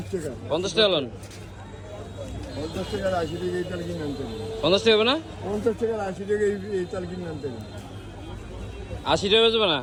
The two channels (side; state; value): both; identical; correlation 1.00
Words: টাকা। 50 টাকা লোন? 50 টাকার 80 টাকা এই তাল কিনে আনতে হবে। 50 টাকা হবে না? 50 টাকার 80 টাকা এই তাল কিনে আনতে হবে। 80 টাকা বেচবে না?